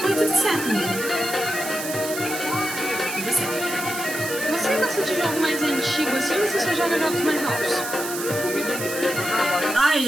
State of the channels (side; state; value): right; noise; hiss, 7 dB below the sound